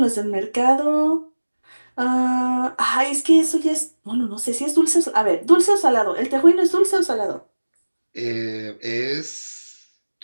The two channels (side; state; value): both; inverted; correlation -1.00